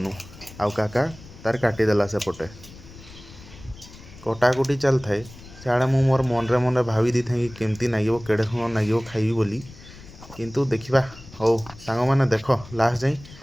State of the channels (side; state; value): left; noise; rumble, 19 dB below the sound